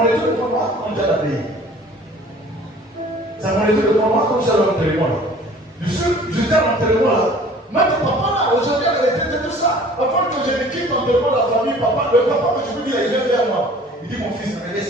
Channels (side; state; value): both; normal; correlation 0.49